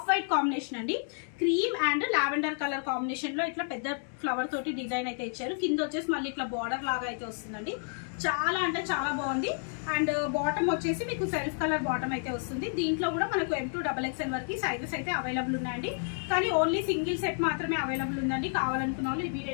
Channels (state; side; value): silent; right; 57 dB below the other